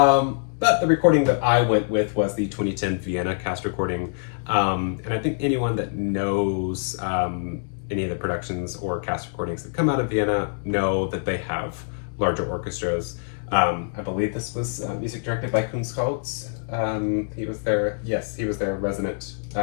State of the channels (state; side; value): silent; right; digital silence